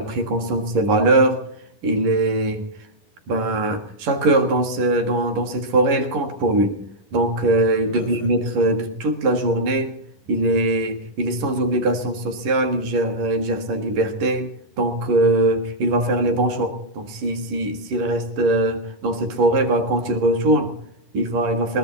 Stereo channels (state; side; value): late; left; 11 ms